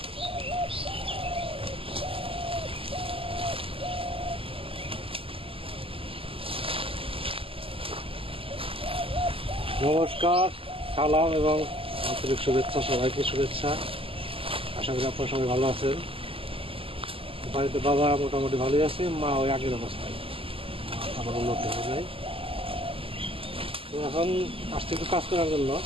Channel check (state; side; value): late; left; 0.26 ms